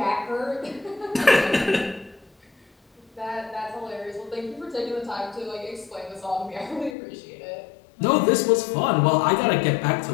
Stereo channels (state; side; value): drops out; right; at 7.0 s